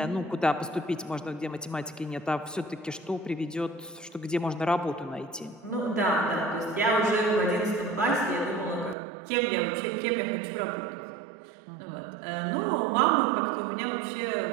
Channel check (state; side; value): drops out; left; at 9.0 s